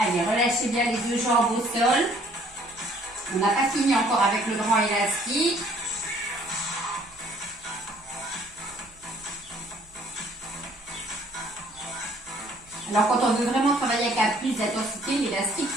relâchez bien les deux jambes au sol. On n'a pas fini encore avec le grand élastique. Alors quand on veut vraiment travailler avec la plus d'intensité, l'élastique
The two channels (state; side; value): noise; right; hum, 29 dB below the sound